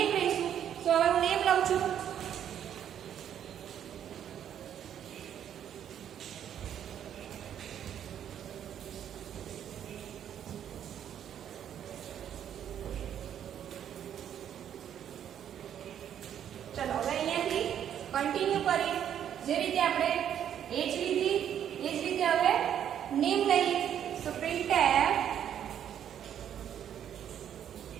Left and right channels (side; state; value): left; quieter; 9.7 dB